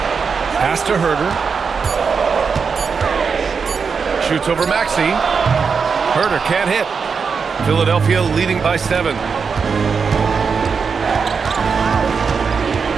Pass to Herter. Shoots over Maxey. Herter can't hit. Philadelphia leading by 7.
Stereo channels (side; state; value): left; quieter; 5.6 dB